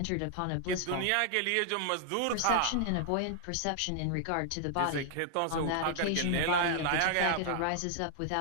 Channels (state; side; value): different; both; correlation 0.00